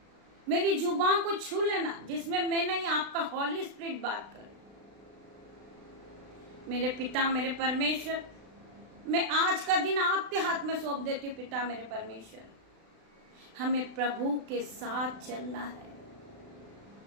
मेरी जुबान को छू लेना, जिसमें मैं नहीं आपका हॉली स्पिरिट बात करे। मेरे पिता मेरे परमेश्वर, मैं आज का दिन आपके हाथ में सौंप देती हूँ पिता मेरे परमेश्वर। हमें प्रभु के साथ चलना है।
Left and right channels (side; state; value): left; late; 36 ms